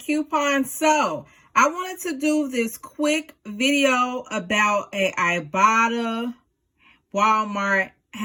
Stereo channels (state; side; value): identical; both; correlation 1.00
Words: So I wanted to do this quick video about a Ibotta Walmart